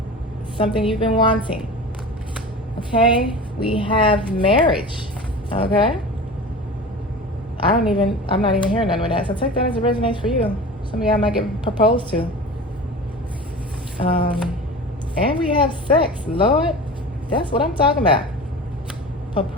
Something you've been wanting. Okay? We have marriage. Okay? I'm not even hearing none with that. So take that as it resonates for you. Some of y'all might get proposed to. And we have sex. Lord, that's what I'm talking about.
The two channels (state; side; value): normal; both; correlation 0.34